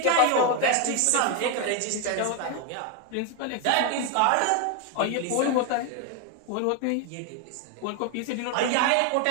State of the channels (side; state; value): both; different; correlation 0.01